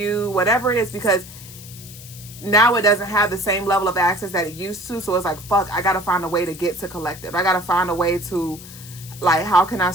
whatever it is, because now it doesn't have the same level of access that it used to. So it's like, fuck, I got to find a way to get to collective. I got to find a way to, like, how can I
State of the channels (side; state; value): left; noise; hiss, 16 dB below the sound